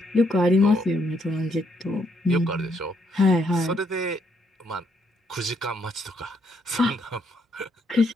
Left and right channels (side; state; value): both; normal; correlation 0.73